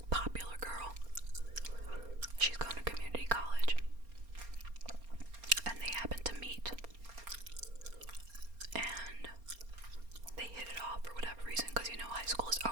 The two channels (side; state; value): left; late; 4.3 ms